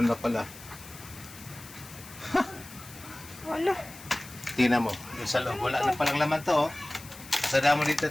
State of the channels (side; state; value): left; noise; hiss, 17 dB below the sound